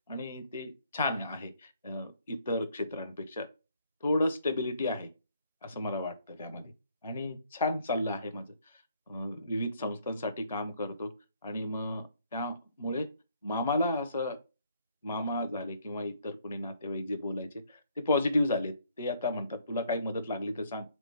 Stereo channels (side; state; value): both; inverted; correlation -0.66